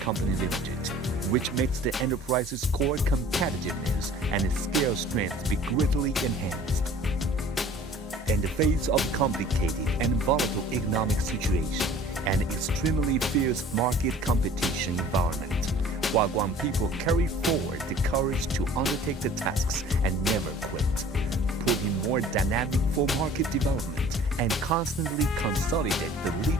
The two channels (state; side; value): normal; both; correlation 0.49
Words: Limited, which makes the enterprise's core competitiveness and its scale strength be greatly enhanced. In the face of complicated and volatile economic situation and extremely fierce market competition environment, Huaguang people carry forward the courage to undertake the tasks and never quit, putting more dynamic for market development and constantly consolidate the